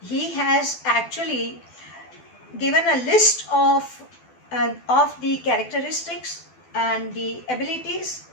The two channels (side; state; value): right; late; 12 ms